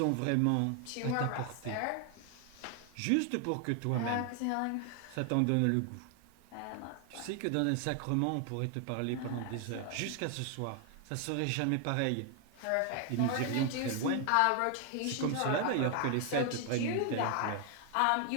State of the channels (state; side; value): different; both; correlation 0.00